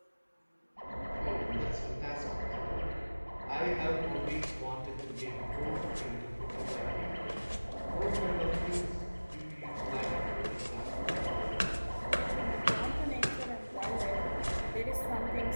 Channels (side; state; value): both; inverted; correlation -1.00